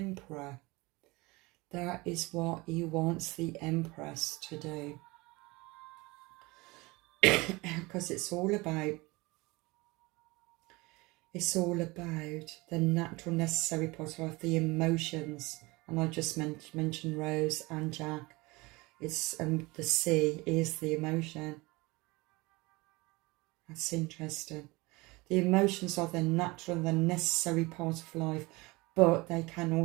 That is what he wants the Empress to do. Because it's all about the natural, necessary part of the emotions. And I just mentioned Rose and Jack. It's the sea is the emotion. That's interesting. The emotions are the natural and the necessary part of life, but they can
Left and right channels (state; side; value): quieter; left; 23.4 dB